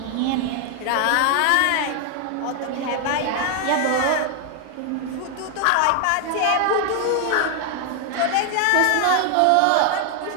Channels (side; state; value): both; different; correlation 0.00